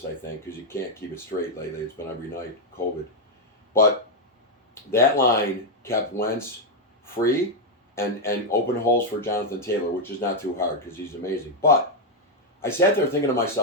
I think, because you can't keep it straight lately. It's been every night, COVID. But that line kept Wentz free and open holes for Jonathan Taylor, which is not too hard because he's amazing. But I sat there thinking to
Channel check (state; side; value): normal; both; correlation 0.01